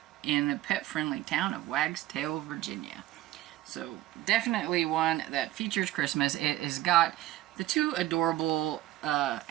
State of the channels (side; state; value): left; quieter; 14.8 dB